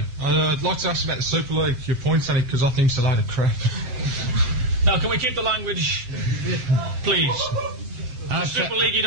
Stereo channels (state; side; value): late; left; 7.8 ms